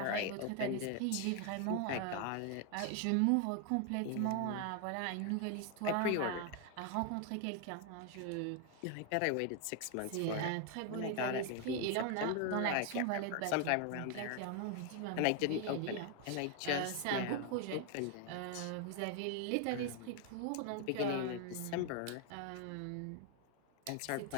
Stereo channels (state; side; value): different; both; correlation 0.00